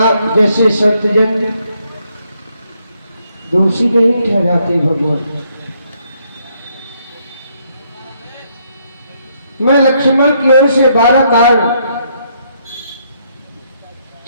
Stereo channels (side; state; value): both; inverted; correlation -0.72